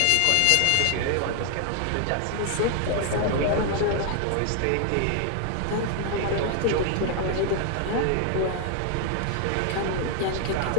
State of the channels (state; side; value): different; both; correlation 0.00